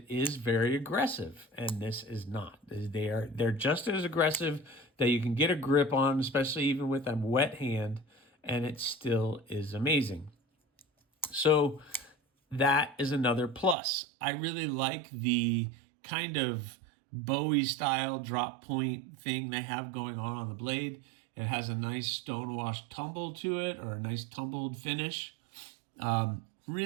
is very aggressive, and this is not. They're just as aggressive that you can get a grip on, especially even with a wet hand, and it still is amazing. So that is another plus. I really like the kind of Bowie style drop point thing they have going on the blade. It has a nice stonewash tumble to it, or a nice tumbled finish.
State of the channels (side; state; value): left; drops out; at 13.8 s